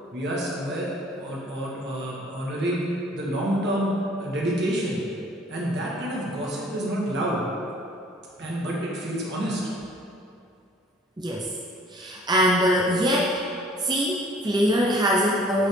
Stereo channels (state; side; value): normal; both; correlation 0.54